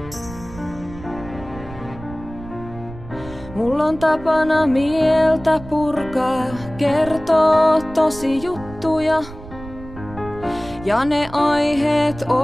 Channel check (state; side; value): noise; right; rumble, 15 dB below the sound